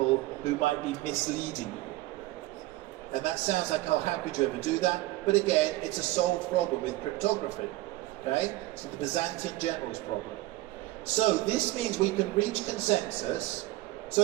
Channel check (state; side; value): quieter; left; 18.1 dB